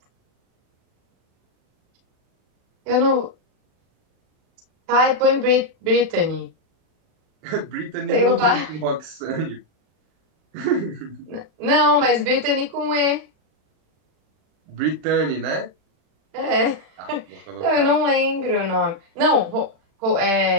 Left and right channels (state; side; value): late; left; 38 ms